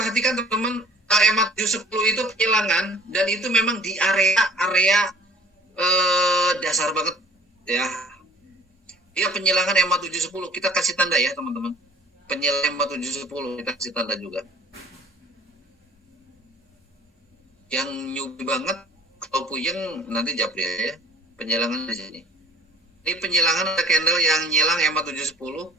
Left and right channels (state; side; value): normal; both; correlation 0.52